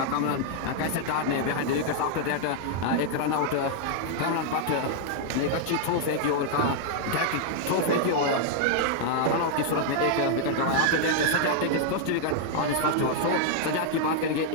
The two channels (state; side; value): different; both; correlation -0.01